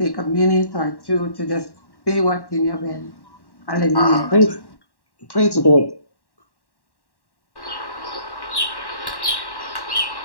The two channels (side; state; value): right; late; 1.1 ms